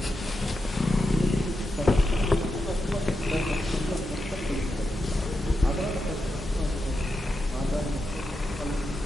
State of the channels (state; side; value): normal; both; correlation 0.87